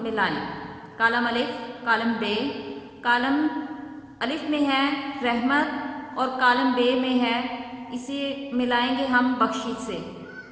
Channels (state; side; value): identical; both; correlation 1.00